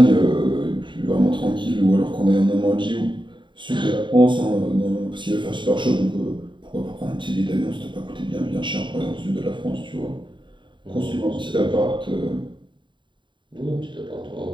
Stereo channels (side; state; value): left; late; 0.23 ms